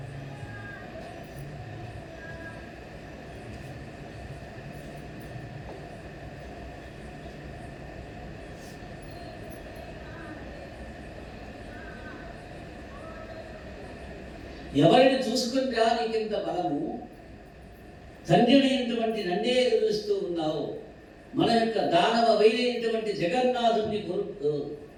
ఎవరిని చూసుకుంటా నీకింత బలము, తండ్రినైనటువంటి నన్నే ఎదురుస్తూ ఉన్నావు, మన యొక్క దానవ వైరైనటువంటి జగన్నాథుడిని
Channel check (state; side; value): identical; both; correlation 1.00